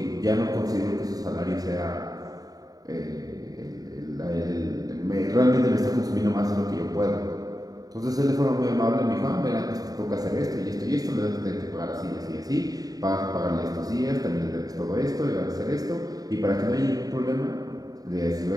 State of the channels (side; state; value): left; late; 0.18 ms